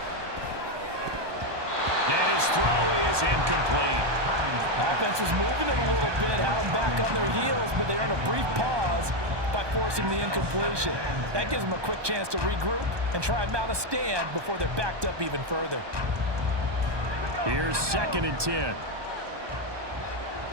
And his throw is incomplete. Offense was moving it a little bit, had them back on their heels, but they earned a brief pause by forcing the incompletion. That gives them a quick chance to regroup and try and mount a stand before they're backed up even further. Here's 2nd and 10.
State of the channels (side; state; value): left; late; 1.2 ms